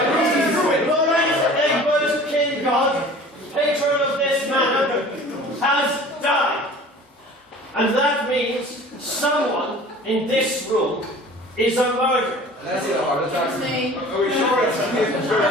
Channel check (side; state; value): both; normal; correlation 0.44